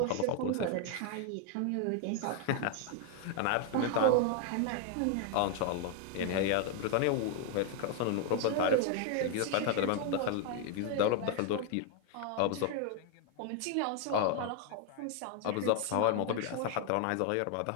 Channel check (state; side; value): different; both; correlation 0.00